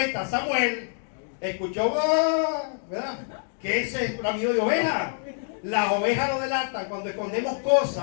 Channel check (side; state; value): right; silent; digital silence